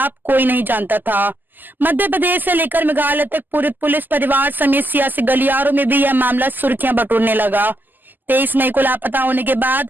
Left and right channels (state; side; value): late; left; 0.088 ms